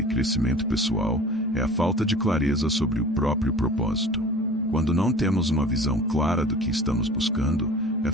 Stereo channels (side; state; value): both; normal; correlation 0.42